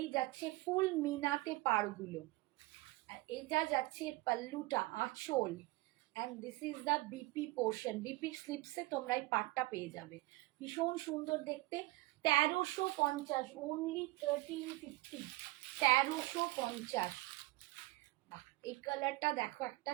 যাচ্ছে ফুল মিনাতে পাড়গুলো, আর এটা যাচ্ছে পাল্লুটা, আঁচল, and this is the BP portion, বিপির স্লিপসে তোমরা এই পাটটা পেয়ে যাবে, ভীষণ সুন্দর দেখতে। 1350, অনলি 1350, 1350। এই কালারটা দেখো, একটা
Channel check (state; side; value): quieter; left; 20.9 dB